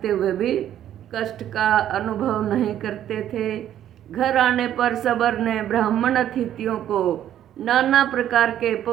हुए भी कष्ट का अनुभव नहीं करते थे। घर आने पर सबर ने ब्राह्मण अतिथियों को नाना प्रकार के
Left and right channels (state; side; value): quieter; left; 11.2 dB